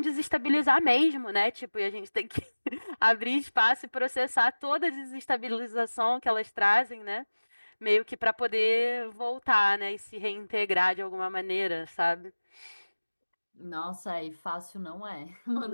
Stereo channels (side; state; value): both; inverted; correlation -1.00